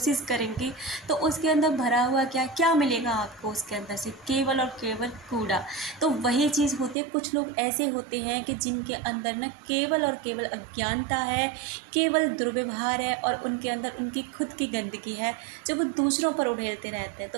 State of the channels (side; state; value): left; drops out; at 7.0 s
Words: करेंगे, तो उसके अंदर भरा हुआ क्या क्या मिलेगा आपको? उसके अंदर से केवल और केवल कूड़ा। तो वही चीज़ होती है, कुछ लोग ऐसे होते हैं कि जिनके अंदर न केवल और केवल अज्ञानता है, केवल दुर्व्यवहार है और उनके अंदर उनकी खुद की गंदगी है जो वो दूसरों पर उड़ेलते रहते हैं।